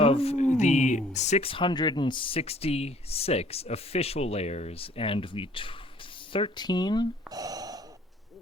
the 666 official layers and the 13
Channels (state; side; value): normal; both; correlation 0.57